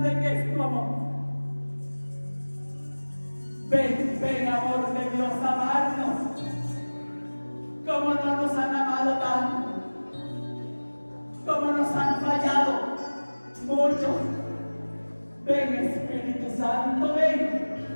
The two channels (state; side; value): inverted; both; correlation -1.00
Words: que es tu amor. Ven, ven amor de Dios, amarnos como no nos han amado tanto, como nos han fallado muchos. Ven Espíritu Santo, ven.